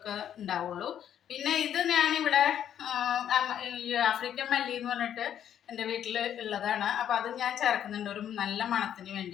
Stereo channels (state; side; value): quieter; right; 9.9 dB